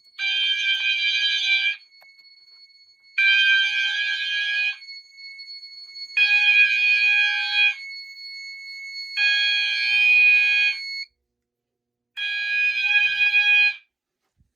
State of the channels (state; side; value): quieter; left; 3.1 dB